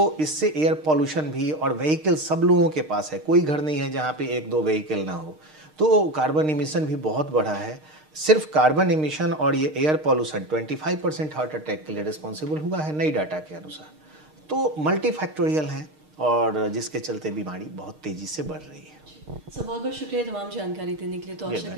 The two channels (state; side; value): late; left; 6.5 ms